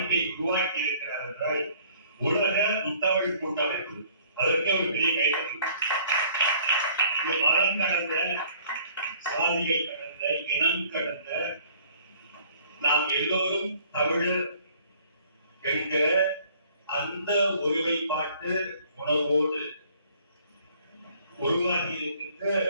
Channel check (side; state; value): both; inverted; correlation -0.56